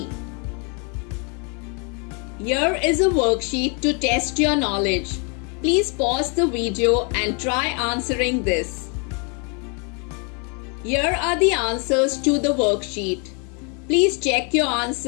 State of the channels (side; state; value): right; quieter; 35.8 dB